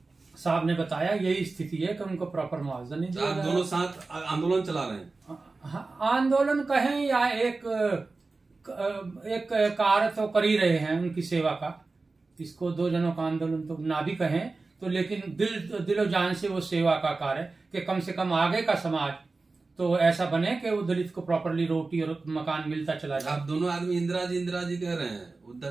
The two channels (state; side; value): quieter; left; 3.7 dB